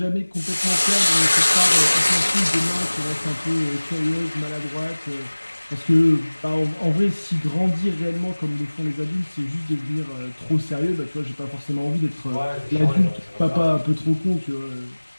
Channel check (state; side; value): inverted; both; correlation -1.00